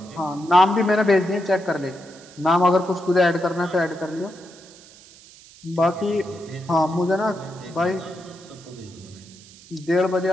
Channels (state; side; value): noise; right; hiss, 22 dB below the sound